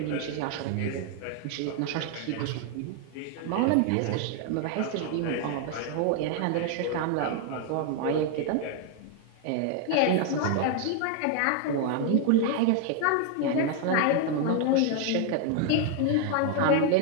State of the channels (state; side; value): different; both; correlation 0.00